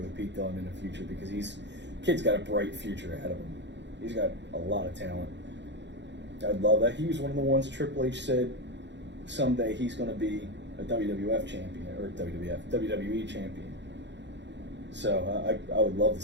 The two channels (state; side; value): late; left; 0.52 ms